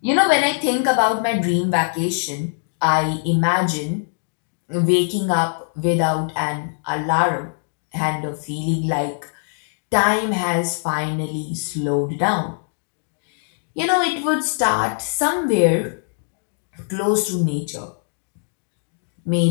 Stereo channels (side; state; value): right; silent; digital silence